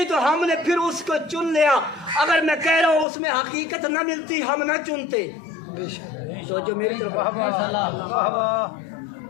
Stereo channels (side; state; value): right; drops out; at 3.1 s